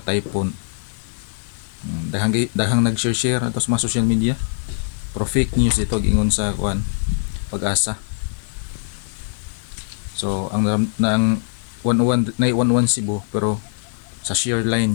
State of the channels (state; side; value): silent; right; digital silence